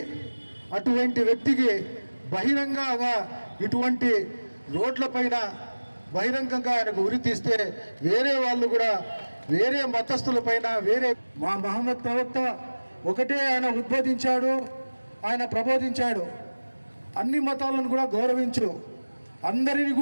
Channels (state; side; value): inverted; both; correlation -1.00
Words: అటువంటి వ్యక్తికి బహిరంగంగా ఇటువంటి రోడ్లపైన బహిరంగంగా ఆయనకు ఉరి తీస్తే వేరే వాళ్ళు కూడా, వేరే మతస్థులపైన, వేరే మా మహమ్మద్ ప్రవక్త ఒకటే ఆయన ఉద్బోధించాడు, ఆయన ప్రబోధించాడు, అన్ని మతాలను కూడా గౌరవించు, అందరిని